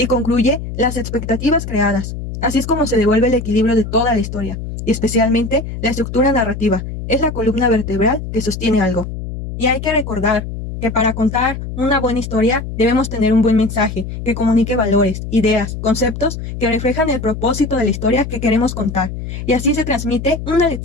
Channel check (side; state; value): left; noise; hum, 7 dB below the sound